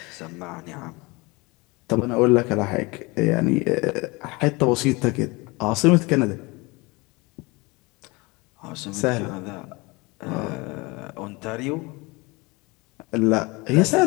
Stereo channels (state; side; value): quieter; right; 25.2 dB